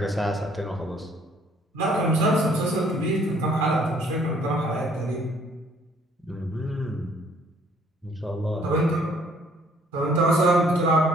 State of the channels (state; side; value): normal; both; correlation 0.61